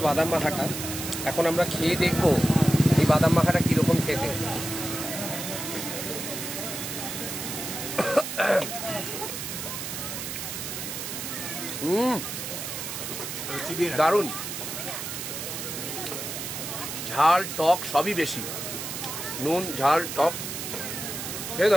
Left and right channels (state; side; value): noise; right; hiss, 6 dB below the sound